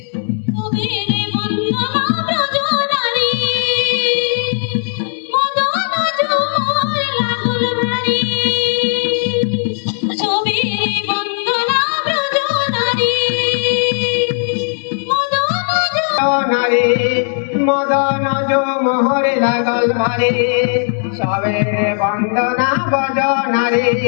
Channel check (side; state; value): right; silent; digital silence